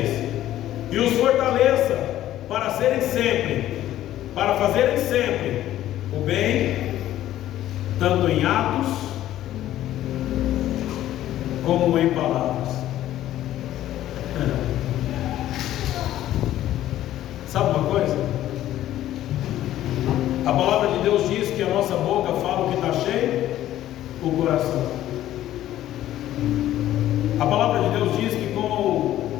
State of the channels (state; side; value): quieter; right; 13.2 dB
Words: e os fortaleça para fazerem sempre o bem, tanto em atos como em palavras. Sabe uma coisa? A palavra de Deus diz que a nossa boca fala o que está cheio, o coração. A palavra de Deus diz que com